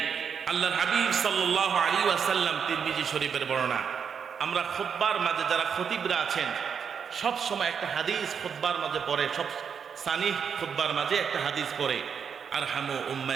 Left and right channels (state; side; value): quieter; left; 7.0 dB